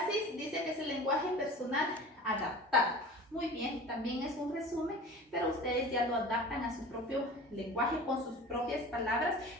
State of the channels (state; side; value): normal; both; correlation 0.39